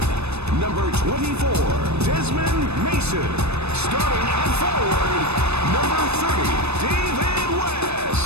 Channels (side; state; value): left; late; 0.80 ms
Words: number 24, Desmond Mason. Starting at forward, number 30, David